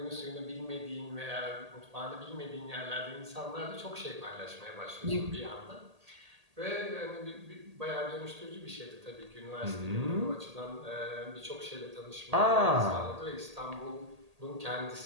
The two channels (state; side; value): late; left; 1.8 ms